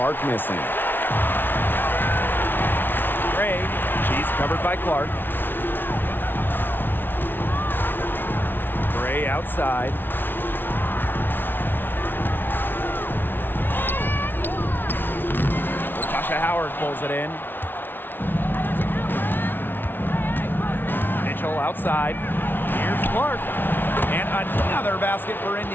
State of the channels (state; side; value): late; right; 0.097 ms